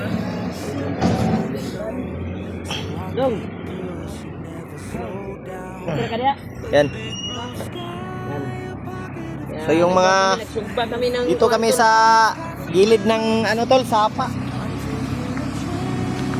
Dong. Okay ka diya? Yan. Yan. So yung mga nagsugba kami ng dito kami sa gilid ng ano tol, sapa.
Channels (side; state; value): both; identical; correlation 1.00